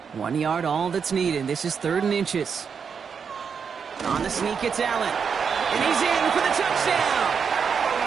1 yard, all that's needed. This is 3rd and inches. On the sneak, it's Allen. And he's in for the touchdown.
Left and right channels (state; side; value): quieter; left; 6.4 dB